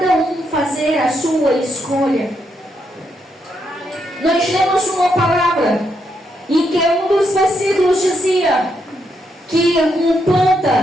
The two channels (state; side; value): normal; both; correlation 0.79